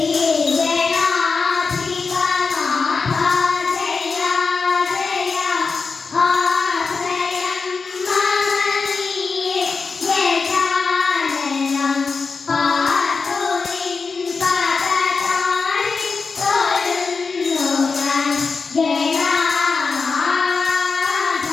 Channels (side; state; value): right; quieter; 4.7 dB